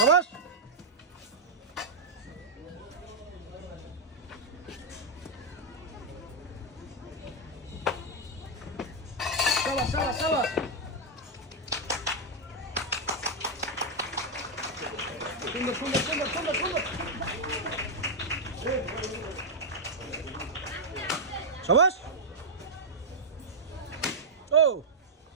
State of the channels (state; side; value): normal; both; correlation -0.03